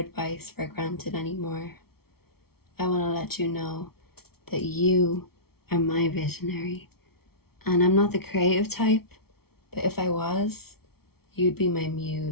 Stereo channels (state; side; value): late; right; 0.95 ms